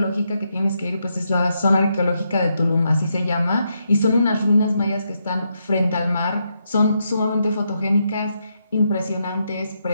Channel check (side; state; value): both; inverted; correlation -0.81